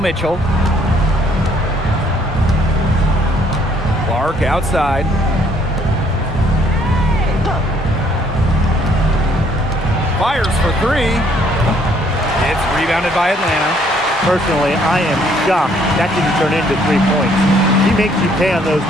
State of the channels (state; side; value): normal; both; correlation 0.65